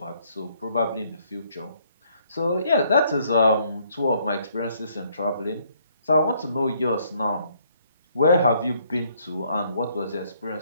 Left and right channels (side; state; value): both; inverted; correlation -0.67